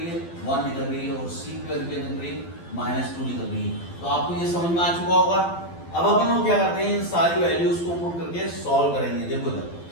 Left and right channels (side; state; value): right; late; 12 ms